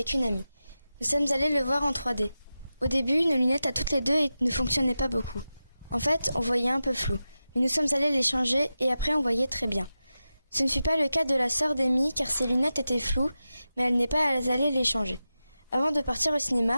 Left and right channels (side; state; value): both; inverted; correlation -0.92